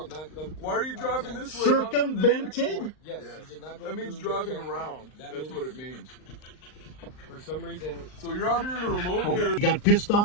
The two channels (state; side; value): late; right; 39 ms